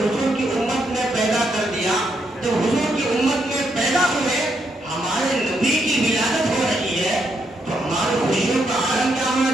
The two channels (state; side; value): normal; both; correlation 0.78